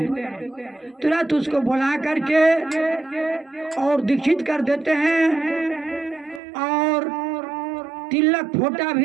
तुरंत उसको बुला करके और दीक्षित कर देते हैं और तिलक फोटा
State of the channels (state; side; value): drops out; left; at 6.4 s